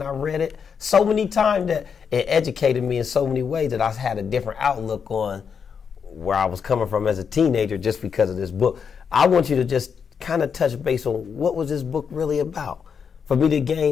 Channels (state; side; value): quieter; right; 6.6 dB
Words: I read it so many times that it educated me in so many ways that I had a different outlook on where I was coming from as a teenager just because of this book. I want you to just kind of touch base on what was this book really about, for me to